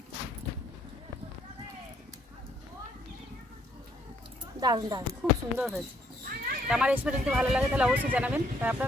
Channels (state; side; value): normal; both; correlation 0.68